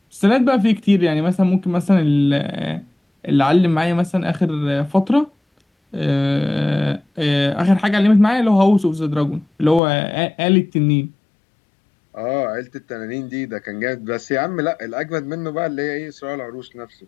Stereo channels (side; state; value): right; drops out; at 9.8 s